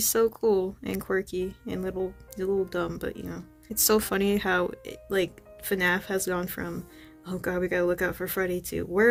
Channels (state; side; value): identical; both; correlation 1.00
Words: so cool and quirky and he's a little dumb, but you know, it's so funny how like FNAF has gone from, oh god, we gotta look out for Freddy, to